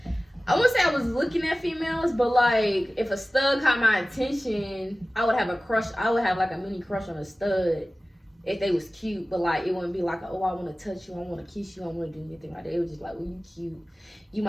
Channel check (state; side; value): normal; both; correlation 0.97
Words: I wouldn't say I was looking at females, but like, if a stud caught my attention, I would have a crush. I would have like a mini crush on a stud if they was cute, but like, it wouldn't be like, oh, I want to touch you, I want to kiss you, I want to do anything like that. It was just like, well, you cute, you